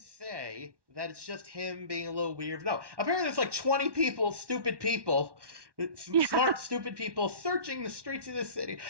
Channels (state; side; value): late; left; 1.1 ms